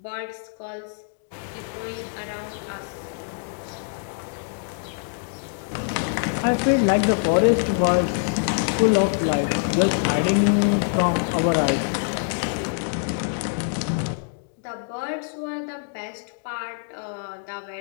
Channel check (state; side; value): silent; right; digital silence